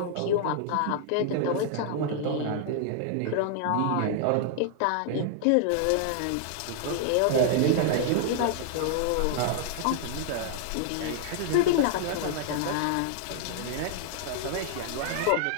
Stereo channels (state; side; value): different; both; correlation -0.01